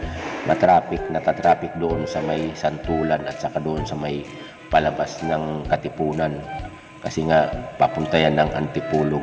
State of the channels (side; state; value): both; identical; correlation 1.00